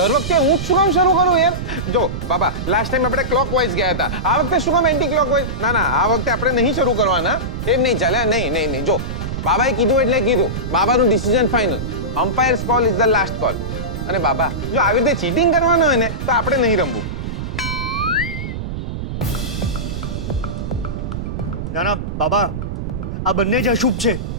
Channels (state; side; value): noise; right; rumble, 5 dB below the sound